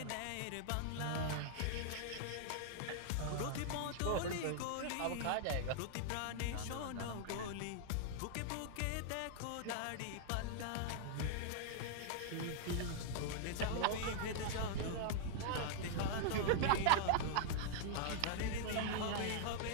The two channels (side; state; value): both; different; correlation -0.01